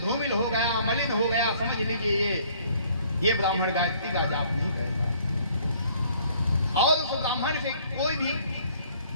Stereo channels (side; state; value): both; inverted; correlation -0.59